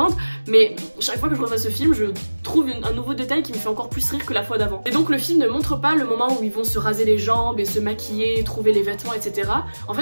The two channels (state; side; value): inverted; both; correlation -1.00